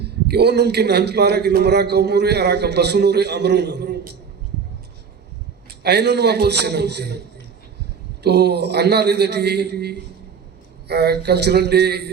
کہ وہ نمکن ہنچ پارا کہ نمرا قومو رہے ارہا کا بسونو رہے امرونو اینو نما پوزیشن ہوتے ہیں تو انہا ریدٹی کلچرل ڈے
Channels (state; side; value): quieter; left; 6.3 dB